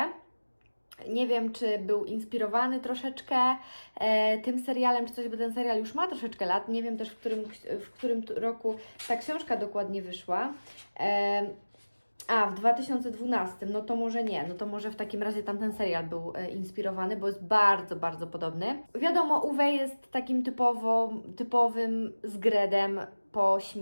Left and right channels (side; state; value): both; inverted; correlation -1.00